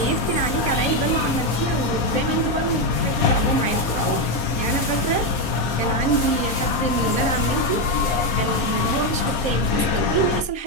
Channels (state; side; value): late; right; 4.2 ms